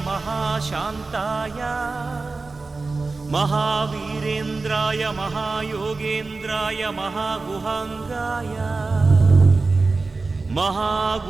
महाशान्ताय महावीरेन्द्राय महायोगेन्द्राय महागुहाङ्गाय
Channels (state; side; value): quieter; left; 3.8 dB